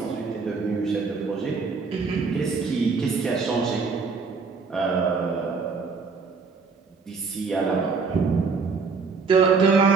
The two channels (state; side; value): quieter; left; 4.9 dB